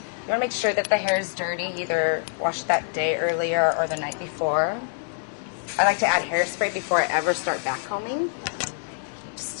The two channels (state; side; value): silent; right; digital silence